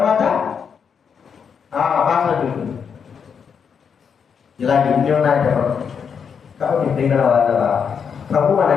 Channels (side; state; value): right; quieter; 6.8 dB